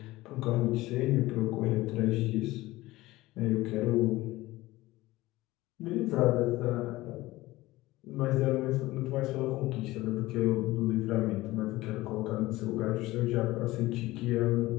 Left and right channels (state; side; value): quieter; right; 18.5 dB